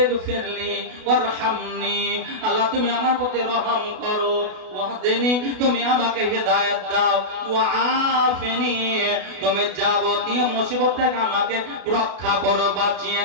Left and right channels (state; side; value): late; left; 32 ms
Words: ফিরলি ওয়ারহামনি, আল্লাহ তুমি আমার প্রতি রহম করো। ওয়াহদিনি, তুমি আমাকে হেদায়েত দাও। ওয়াআফিনি, তুমি যাবতীয় মুসিবত থেকে আমাকে রক্ষা করো, বাঁচিয়ে